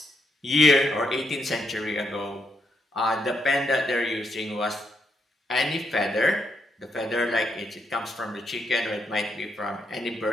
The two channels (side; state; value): both; normal; correlation 0.78